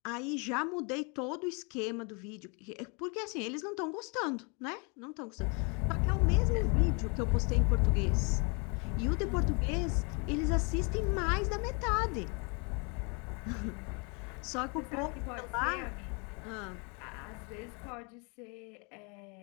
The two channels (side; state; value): right; quieter; 33.4 dB